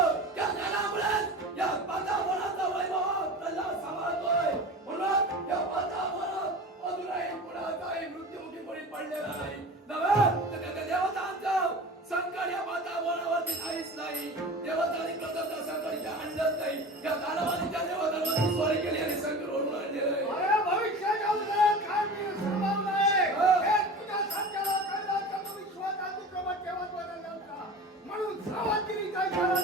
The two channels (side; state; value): both; normal; correlation 0.34